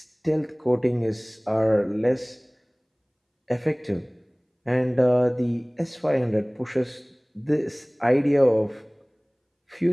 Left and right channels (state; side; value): identical; both; correlation 1.00